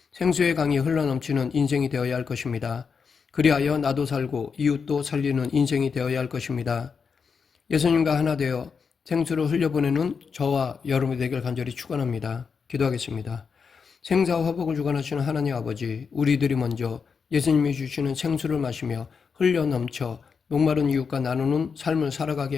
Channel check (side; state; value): right; quieter; 5.8 dB